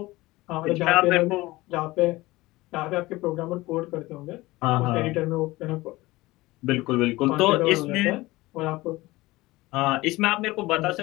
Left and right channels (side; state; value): right; quieter; 19.6 dB